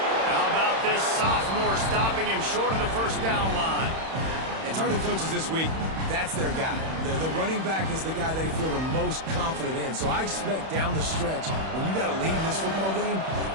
How about this sophomore stopping him short of the first down line? And talking to coaches this week, that's their guy. The running back is the guy they feel the most confident in. So I expect down the stretch, when you got to lead in this football game,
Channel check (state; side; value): late; left; 31 ms